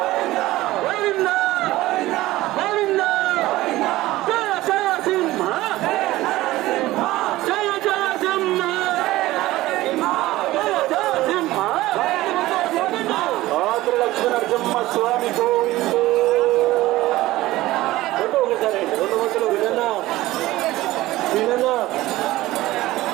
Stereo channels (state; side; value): quieter; left; 17.2 dB